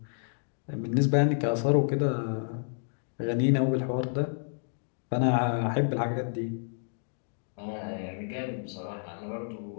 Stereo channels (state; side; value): silent; right; digital silence